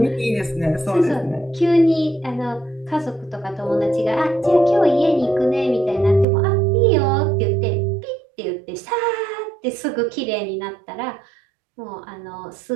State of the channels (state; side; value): drops out; left; at 6.2 s